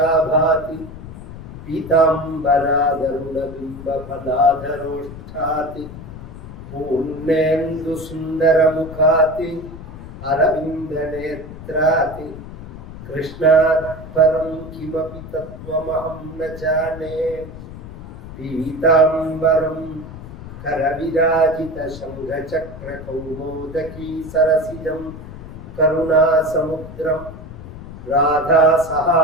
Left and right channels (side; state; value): left; noise; rumble, 13 dB below the sound